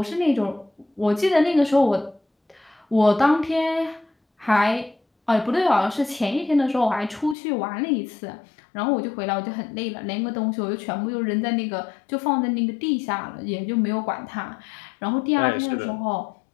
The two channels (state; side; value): drops out; right; at 7.4 s